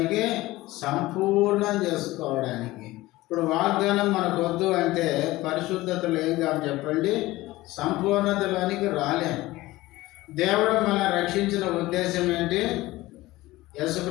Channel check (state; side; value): quieter; right; 18.4 dB